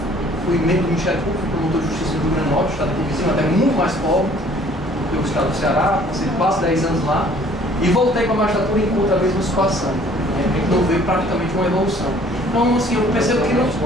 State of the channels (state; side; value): normal; both; correlation 0.56